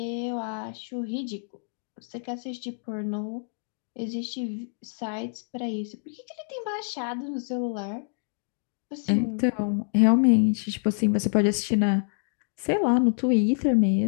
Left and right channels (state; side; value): silent; right; digital silence